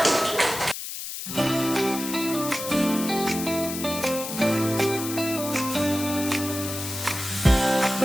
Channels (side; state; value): left; noise; hiss, 7 dB below the sound